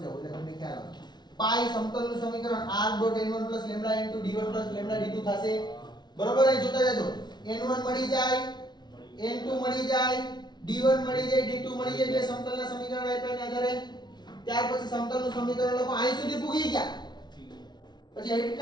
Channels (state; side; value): late; right; 0.20 ms